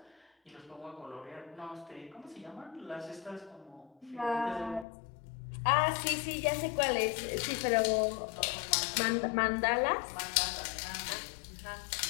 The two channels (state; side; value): drops out; right; at 4.9 s